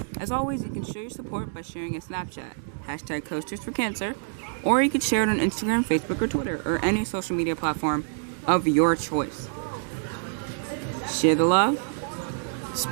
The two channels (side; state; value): left; silent; digital silence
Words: As always, you can show your support by sharing a Snapchat. hashtag Coasters for Cancer, or you could share it on Instagram, Facebook, or Twitter, or any social media platform of your choice. Share the love,